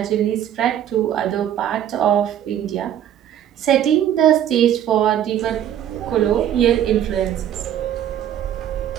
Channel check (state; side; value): quieter; left; 10.6 dB